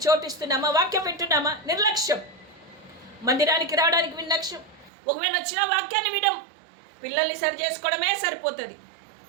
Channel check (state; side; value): drops out; left; at 4.9 s